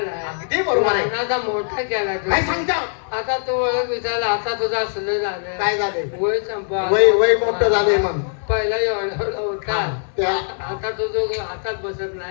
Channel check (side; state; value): right; silent; 62 dB below the other